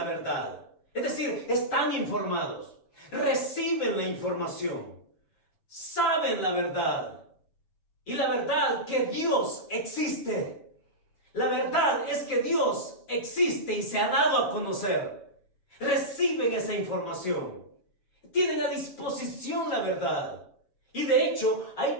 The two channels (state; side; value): late; right; 6.2 ms